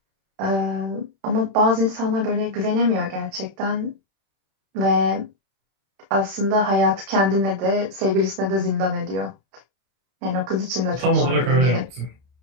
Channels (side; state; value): left; late; 31 ms